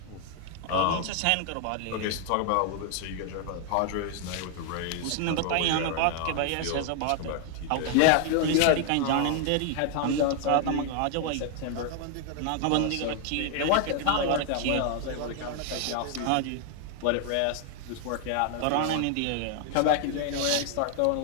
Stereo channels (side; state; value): both; different; correlation 0.00